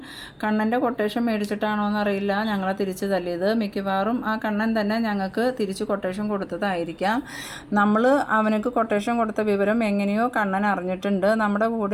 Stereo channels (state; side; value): identical; both; correlation 1.00